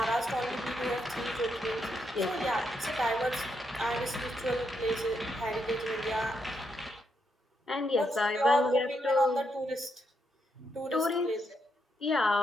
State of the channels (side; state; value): both; normal; correlation 0.80